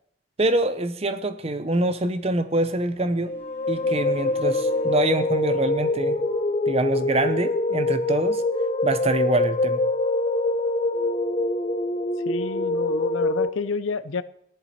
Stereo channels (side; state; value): both; normal; correlation 0.33